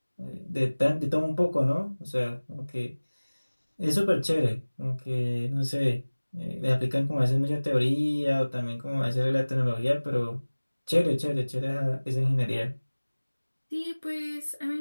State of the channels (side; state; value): both; inverted; correlation -1.00